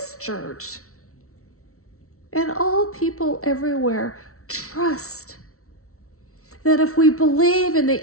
church, and all people everywhere, trust that if we believe in the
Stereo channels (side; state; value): right; late; 0.63 ms